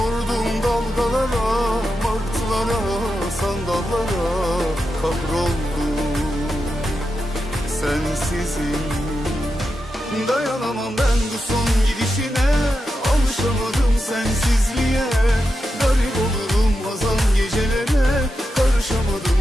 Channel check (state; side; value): normal; both; correlation 0.88